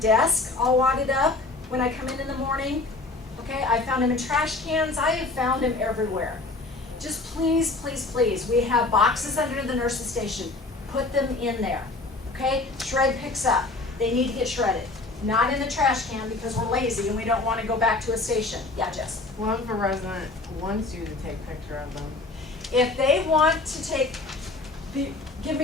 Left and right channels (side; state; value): right; quieter; 3.3 dB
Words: all wadded up when I come in the morning. Okay, I found him in trash cans. I have found him everywhere. Just please, please, please, we have boxes under the nurse's station. Put them in there. Okay, shred picks up. They need to get shredded. Not in the trash can because we're lazy and we don't want to go back to a station. Yeah, Jess. What if a resident wants you to take a picture of them? If they want to give